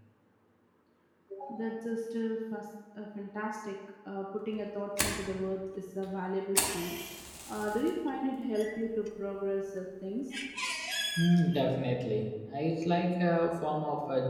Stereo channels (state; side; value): identical; both; correlation 1.00